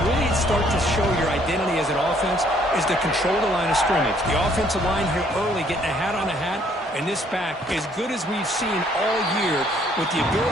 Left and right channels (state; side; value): normal; both; correlation 0.64